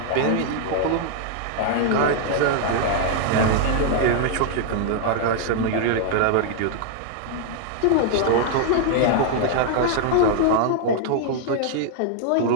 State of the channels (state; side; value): different; both; correlation -0.01